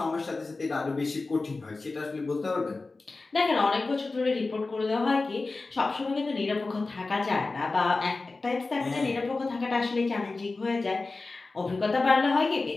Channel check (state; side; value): quieter; right; 3.6 dB